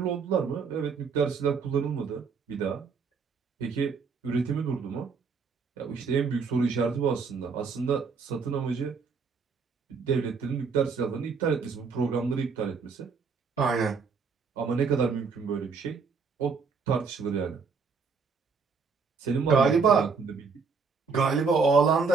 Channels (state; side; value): quieter; left; 5.2 dB